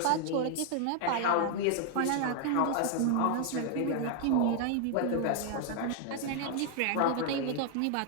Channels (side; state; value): both; different; correlation 0.00